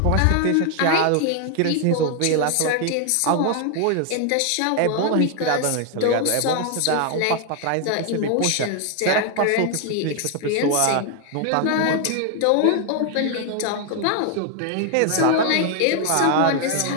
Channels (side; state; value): both; different; correlation 0.00